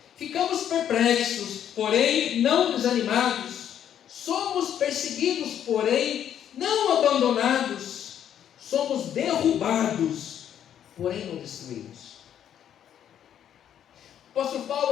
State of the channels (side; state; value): right; quieter; 9.8 dB